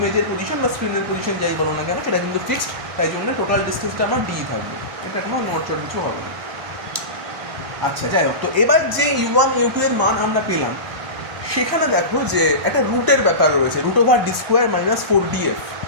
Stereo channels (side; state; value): left; late; 1.0 ms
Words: পজিশন বা স্ক্রিনের পজিশন যাই বলো না কেন সেটা কিন্তু ফিক্সড, তাই জন্য টোটাল ডিস্টেন্সটা আমার D থাকবে, এটা কোনো নড়চড় কিছু হবে না। আচ্ছা যাই হোক, তো এবার যে U1 U2 এর মান আমরা পেলাম সেখানে দেখো যে একটা রুটের ব্যাপার রয়েছে, root over D square minus 4df।